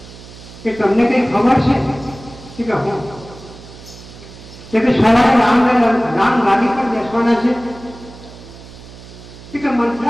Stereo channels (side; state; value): right; noise; hum, 18 dB below the sound